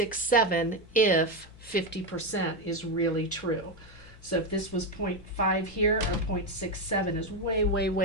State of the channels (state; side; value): normal; both; correlation 0.10